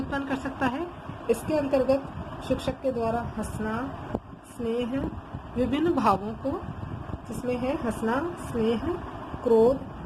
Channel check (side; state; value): both; identical; correlation 1.00